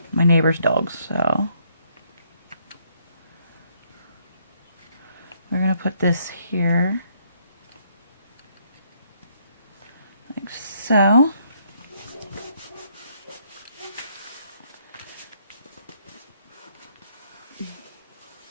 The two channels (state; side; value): inverted; both; correlation -0.70